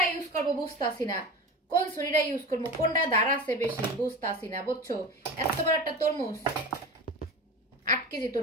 ইউজ করবো বুঝতাছি না কোন ছুরিটা ইউজ করবো কোনটা ধার আছে বেশি বুঝতাছি না বুঝছো এত বড় একটা তরমুজ 8 কেজি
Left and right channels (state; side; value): normal; both; correlation 0.30